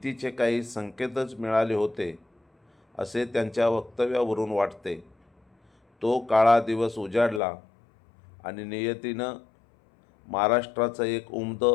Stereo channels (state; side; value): drops out; right; at 7.4 s